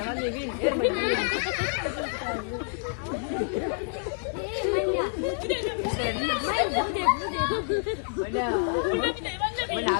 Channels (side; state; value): right; silent; 59 dB below the other